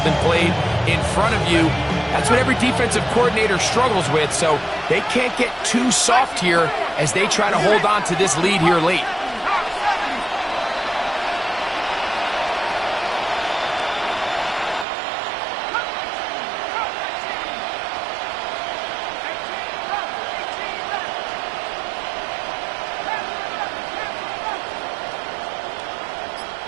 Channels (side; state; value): left; drops out; at 14.9 s